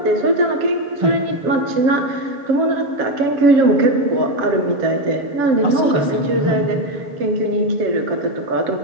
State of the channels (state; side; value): late; left; 7.5 ms